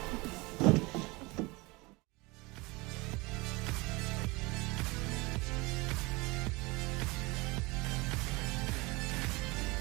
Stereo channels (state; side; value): quieter; left; 24.2 dB